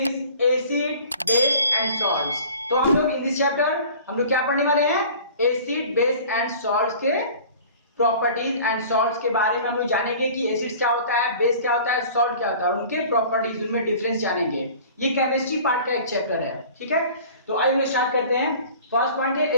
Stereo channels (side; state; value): both; inverted; correlation -0.45